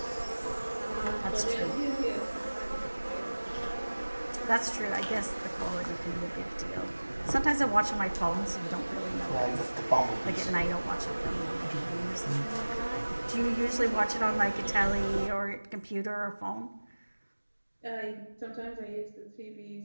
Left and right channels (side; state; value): both; inverted; correlation -1.00